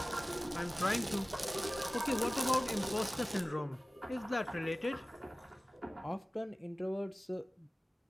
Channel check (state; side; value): normal; both; correlation 0.97